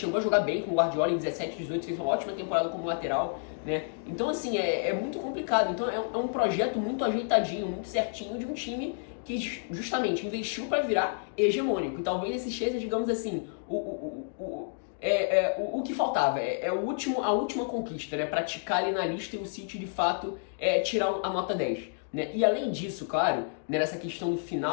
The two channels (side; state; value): right; silent; digital silence